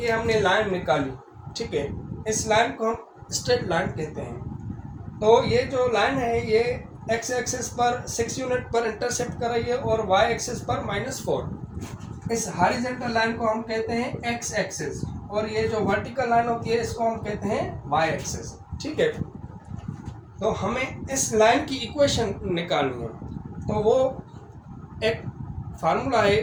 हमने लाइन निकाली, ठीक है। इस लाइन को हम स्ट्रेट लाइन कहते हैं। तो ये जो लाइन है ये x एक्सिस पर 6 यूनिट पर इंटरसेप्ट कर रही है और y एक्सिस पर -4। इस हॉरिजॉन्टल लाइन को हम कहते हैं x एक्सिस और ये जो वर्टिकल लाइन होती है इसको हम कहते हैं y एक्सिस, ठीक है। तो हमें इस लाइन की इक्वेशन निकालनी है। तो वो एक फार्मूला है,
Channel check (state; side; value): identical; both; correlation 1.00